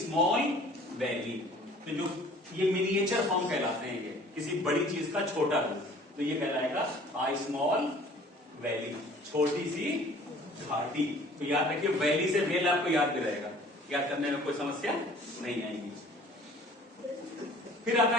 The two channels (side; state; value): both; normal; correlation 0.51